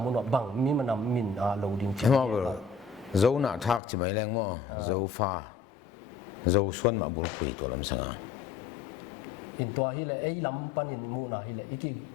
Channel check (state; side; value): drops out; right; at 3.8 s